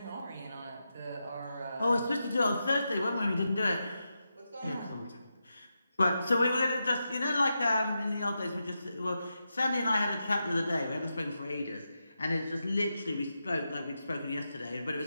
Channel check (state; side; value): inverted; both; correlation -0.88